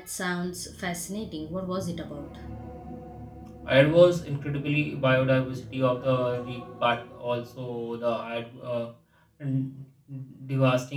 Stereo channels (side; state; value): both; identical; correlation 1.00